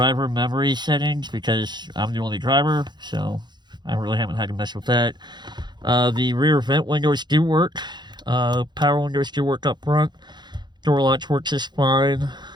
memory settings because I'm the only driver, so I really haven't had to mess with that. The rear vent windows do work. Power windows do work up front. Door latch works just fine.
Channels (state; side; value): late; left; 0.21 ms